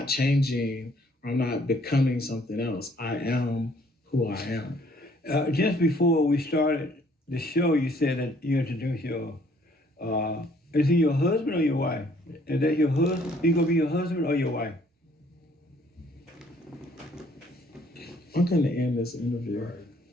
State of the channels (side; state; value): both; normal; correlation 0.62